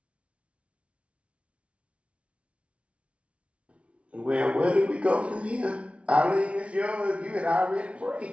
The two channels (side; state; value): left; late; 0.062 ms